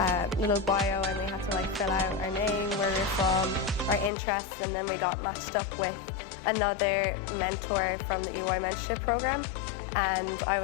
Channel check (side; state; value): right; drops out; at 4.1 s